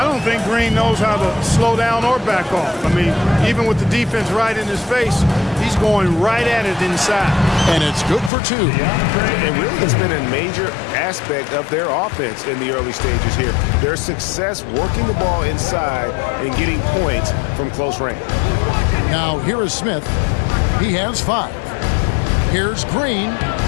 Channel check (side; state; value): right; drops out; at 8.3 s